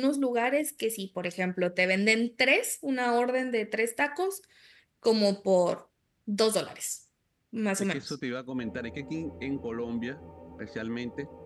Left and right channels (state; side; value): identical; both; correlation 1.00